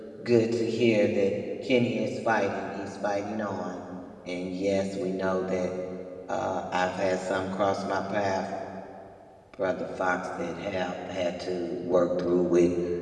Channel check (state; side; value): identical; both; correlation 1.00